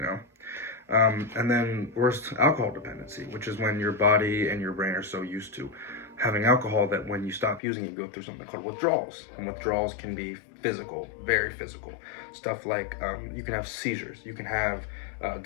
and then worst, alcohol dependency, which is when your body and your brain are so used to having alcohol that when you stop using it, you go through something called withdrawals. And withdrawals can be physical, very physical. Stuff like you can have seizures, you can have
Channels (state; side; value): drops out; right; at 7.6 s